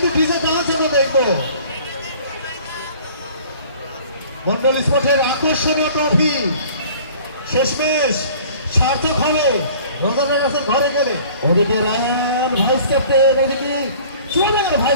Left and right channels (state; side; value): inverted; both; correlation -0.49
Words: ডিজে ডান্স আমরা দেখবো। মন্ডল স্পোর্টের আকর্ষণীয় ট্রফি শেষমেশ সার্থক হবে রোজানের কাছে ঘরে গেলে। ওদিকে রায়ান ভাইস ক্যাপ্টেন, ওদিকে সোনার